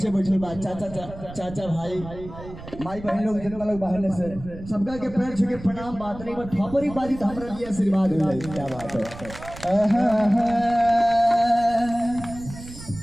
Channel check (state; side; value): noise; right; rumble, 14 dB below the sound